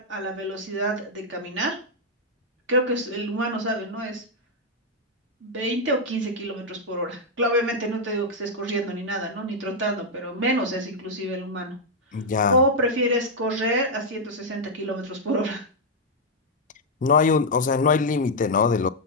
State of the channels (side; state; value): both; normal; correlation -0.02